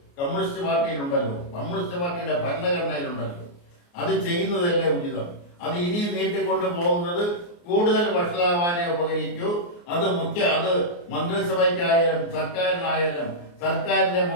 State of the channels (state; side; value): late; right; 29 ms